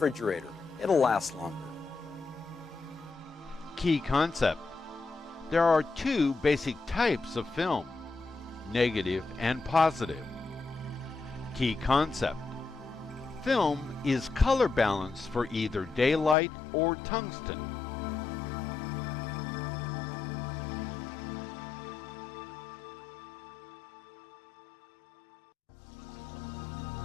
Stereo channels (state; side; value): drops out; right; at 16.4 s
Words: It'll last longer. Key concept. There are two basic types of film, negative and positive. Key concept. Film is color balanced for either daylight or tungsten.